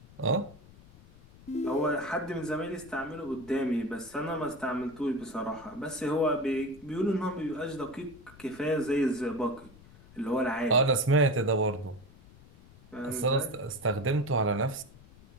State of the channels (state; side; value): noise; left; rumble, 22 dB below the sound